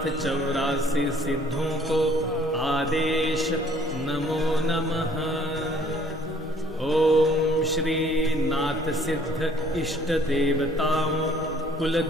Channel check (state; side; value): normal; both; correlation 0.58